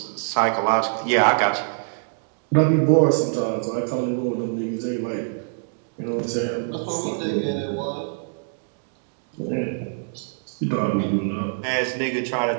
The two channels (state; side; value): silent; left; digital silence